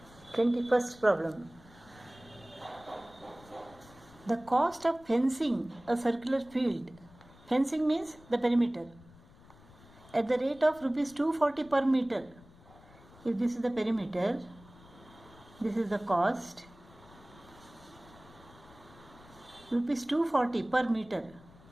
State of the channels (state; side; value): noise; left; rumble, 23 dB below the sound